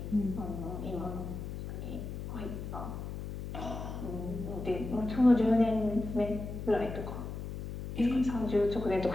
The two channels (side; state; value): left; noise; hum, 7 dB below the sound